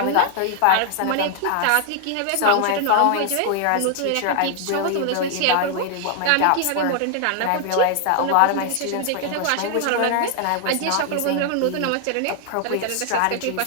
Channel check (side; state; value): both; different; correlation 0.00